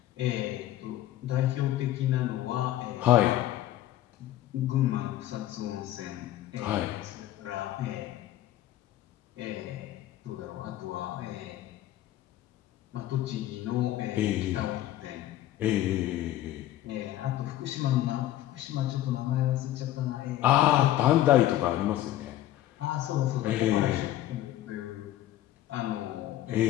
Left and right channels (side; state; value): right; quieter; 13.6 dB